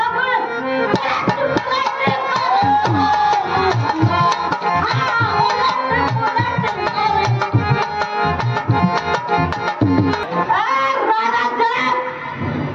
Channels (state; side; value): identical; both; correlation 1.00